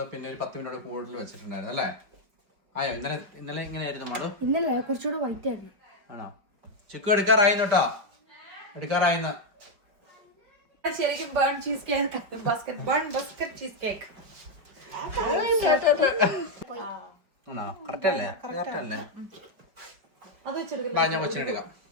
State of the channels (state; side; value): late; left; 5.1 ms